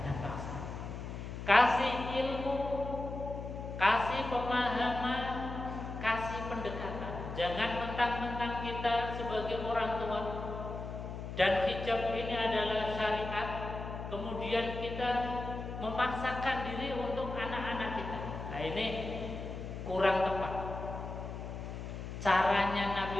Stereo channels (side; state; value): left; noise; hum, 7 dB below the sound